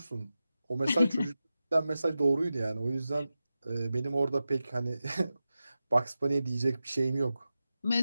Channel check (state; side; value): inverted; both; correlation -0.93